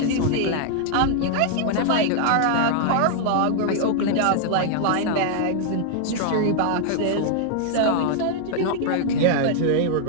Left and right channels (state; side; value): different; both; correlation -0.01